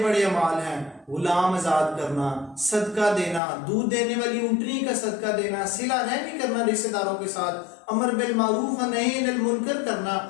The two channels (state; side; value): drops out; right; at 3.4 s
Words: بڑے اعمال ہیں، غلام آزاد کرنا، صدقہ دینا، دودھ دینے والی اونٹنی کا صدقہ دینا، صلہ رحمی کرنا رشتہ داروں کے ساتھ، امر بالمعروف نہی عن المنکر کرنا،